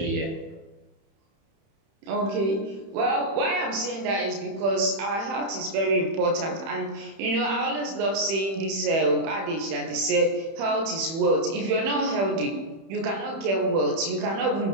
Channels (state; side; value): late; left; 31 ms